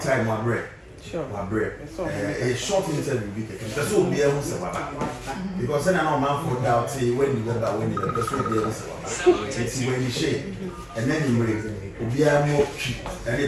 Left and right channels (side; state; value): both; identical; correlation 1.00